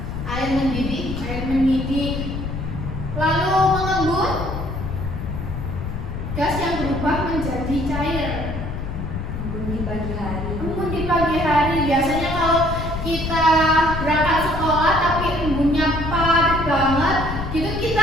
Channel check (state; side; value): noise; left; rumble, 5 dB below the sound